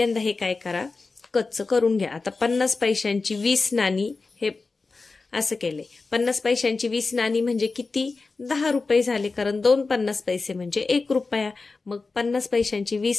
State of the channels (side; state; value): right; quieter; 4.0 dB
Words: हे काय करा, कच्चं करून घ्या। आता 50 पैशांची 20 नाणी हे असं केले। 50 पैशांची 20 नाणी म्हणजे किती, 10 रुपये झाले, कारण 2 50 पैसे म्हणजे 1 रुपया। मग 50 पैशांची